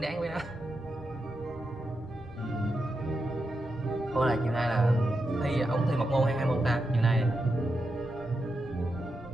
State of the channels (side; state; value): both; normal; correlation 0.87